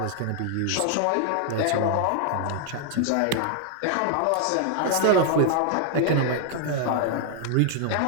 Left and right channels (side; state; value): both; different; correlation 0.00